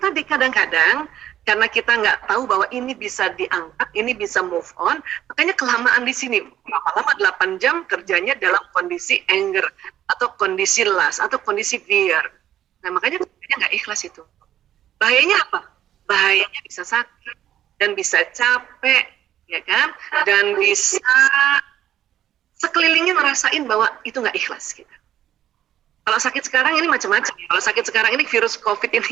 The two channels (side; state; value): left; quieter; 11.5 dB